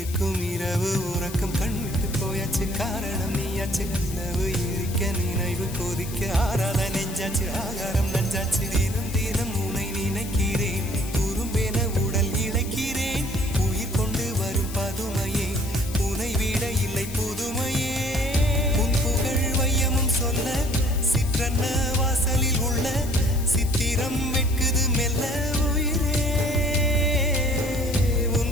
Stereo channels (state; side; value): noise; left; hiss, 13 dB below the sound